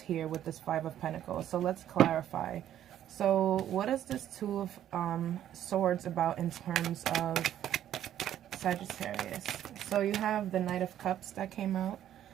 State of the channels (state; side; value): quieter; left; 11.3 dB